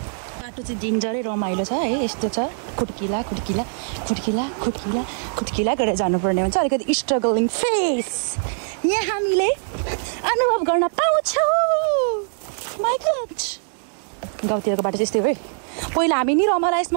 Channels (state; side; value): silent; left; 64 dB below the other